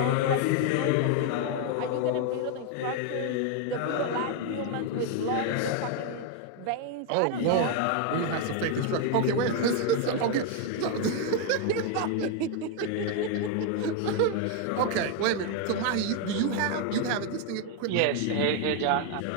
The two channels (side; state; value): both; different; correlation 0.01